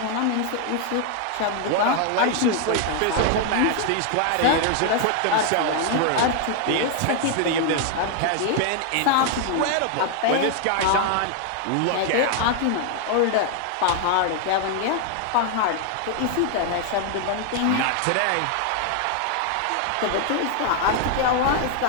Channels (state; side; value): different; both; correlation 0.00